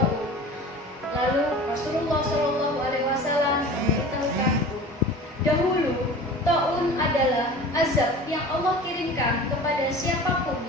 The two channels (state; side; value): normal; both; correlation 0.39